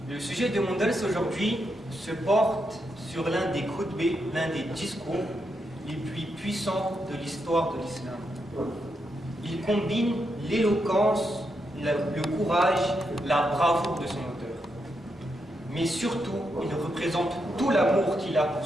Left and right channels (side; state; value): both; normal; correlation 0.83